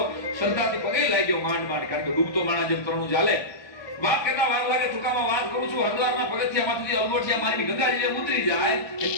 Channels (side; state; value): right; late; 1.3 ms